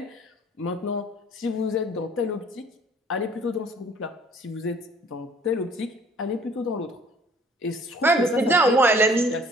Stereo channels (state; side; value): normal; both; correlation 0.55